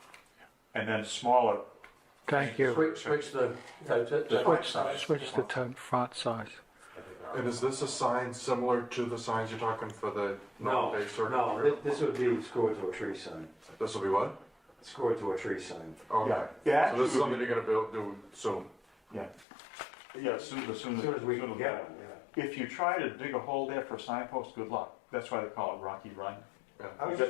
and then smaller. Thank you. Switch the Font size. Switch the font size. And is this a sign similar to the signs you're talking for the No, North Bay Circuit? no, this would be screwed to a tree sign. This will be what? Screwed to a tree sign. Okay. Yeah, So this is actually, something you're gonna do soon? Yeah. Yeah, as soon As soon as we can get them, yeah. If you try to dig a hole there for a signpost, good luck. That's why they call it Rocky Run. I was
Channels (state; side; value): drops out; right; at 19.5 s